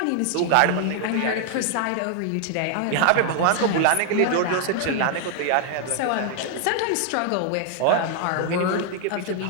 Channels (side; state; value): both; different; correlation 0.00